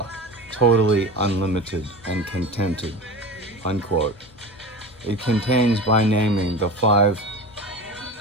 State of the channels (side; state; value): left; noise; rumble, 28 dB below the sound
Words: totally unlimited and contented, unquote. It contains by naming the 5